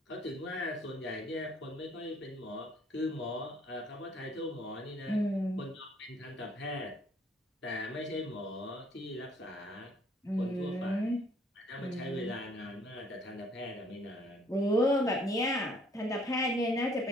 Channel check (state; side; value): normal; both; correlation 0.62